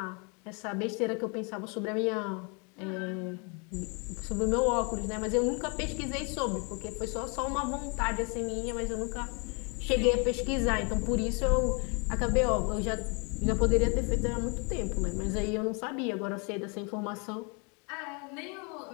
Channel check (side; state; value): right; quieter; 33.8 dB